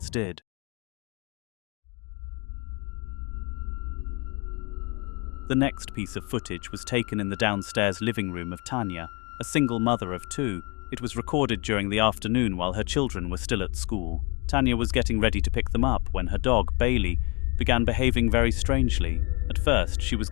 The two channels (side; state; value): right; quieter; 30.0 dB